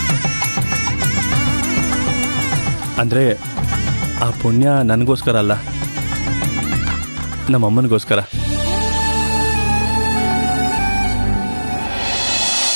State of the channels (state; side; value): inverted; both; correlation -1.00